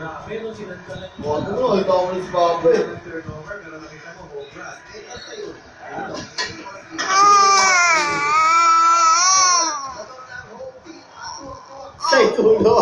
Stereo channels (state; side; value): identical; both; correlation 1.00